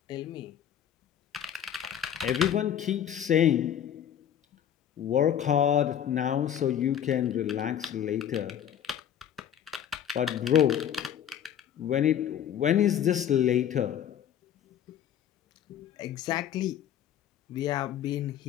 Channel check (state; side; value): quieter; right; 9.7 dB